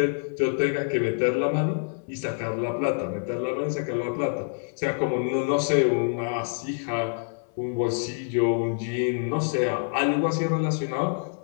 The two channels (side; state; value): right; silent; 61 dB below the other